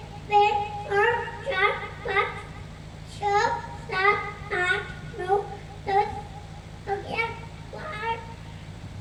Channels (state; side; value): identical; both; correlation 1.00